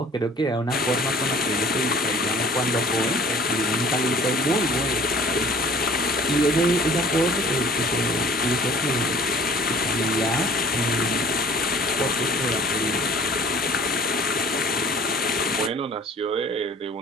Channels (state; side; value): normal; both; correlation 0.50